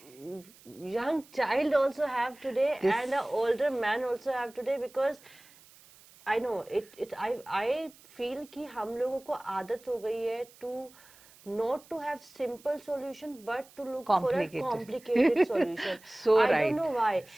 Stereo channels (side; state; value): right; noise; hiss, 25 dB below the sound